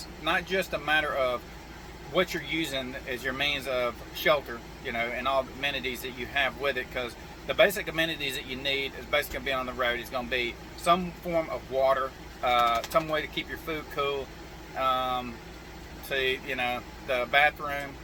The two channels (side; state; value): both; identical; correlation 1.00